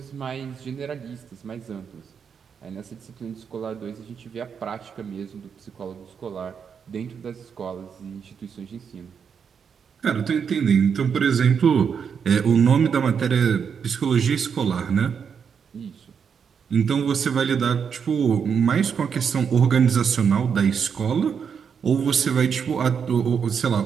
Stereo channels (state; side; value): quieter; left; 6.8 dB